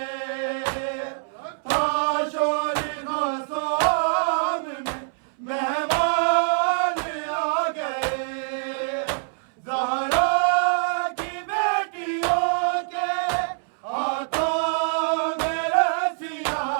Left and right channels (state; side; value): silent; left; 62 dB below the other